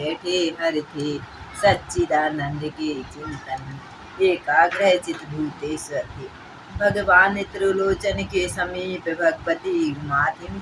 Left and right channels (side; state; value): both; identical; correlation 1.00